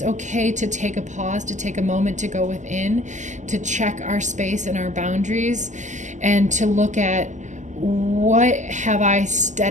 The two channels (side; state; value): left; late; 0.35 ms